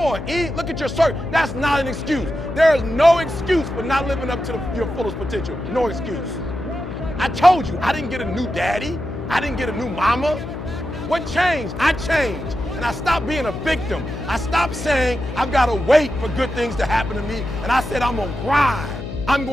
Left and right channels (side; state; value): left; noise; hum, 9 dB below the sound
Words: look at your circle. That's not an excuse. There is no excuse for not living up to your fullest potential. No excuse. I told you, I didn't get a new daddy. I didn't get a new mama. What changed? I changed. And I stopped being a victim. I stopped saying, I've got to wait for good things to happen to me. And I said, I'm going to grind. I'm